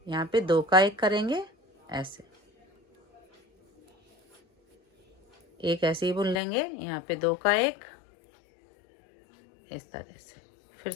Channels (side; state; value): right; drops out; at 6.4 s